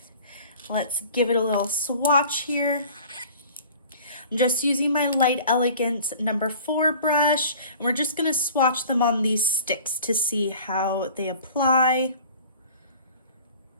Let's give it a little swatch here. I'm just using my Light Elegance number 4 brush, and we're just gonna swatch them on these sticks to see how they apply.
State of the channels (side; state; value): both; inverted; correlation -0.46